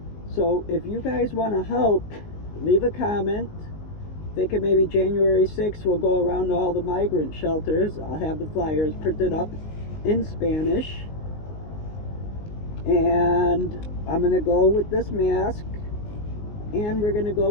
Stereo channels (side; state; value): right; late; 19 ms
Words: So if you guys want to help, leave a comment. Thinking maybe January 6th we'll go around to all the migrant shelters. I'll have the flyers printed up in Spanish. And I'm going to go with this mask. And we're going to